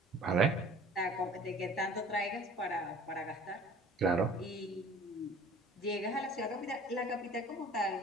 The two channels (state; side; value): normal; both; correlation 0.47